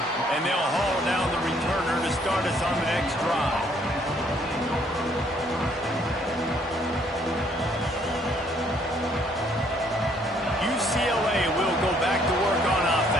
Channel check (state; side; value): normal; both; correlation 0.65